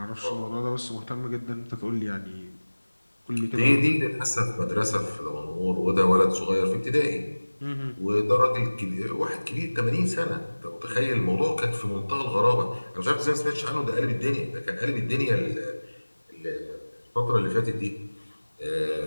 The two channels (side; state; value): both; inverted; correlation -1.00